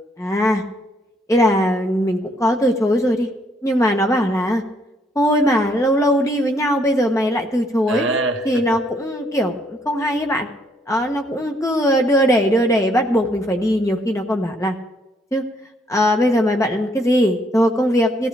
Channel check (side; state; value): both; normal; correlation 0.69